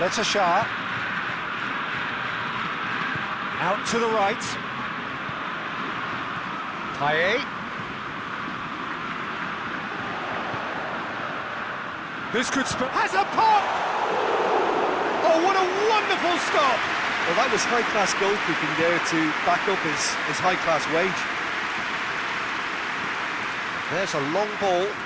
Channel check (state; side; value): identical; both; correlation 1.00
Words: Shah. Out to the right. Paye. This could has a pop! Oh, what a wonderful stop! Well, that was high-class goalkeeping there to back up his high-class wage. There's a long ball.